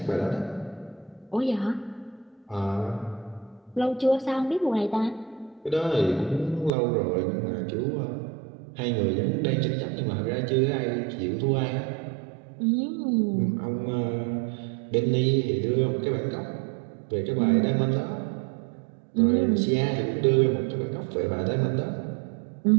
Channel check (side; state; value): left; drops out; at 6.7 s